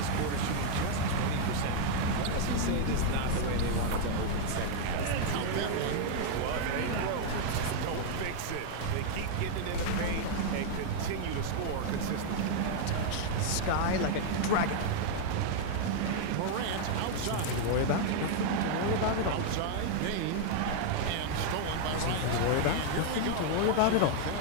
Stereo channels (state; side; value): different; both; correlation 0.00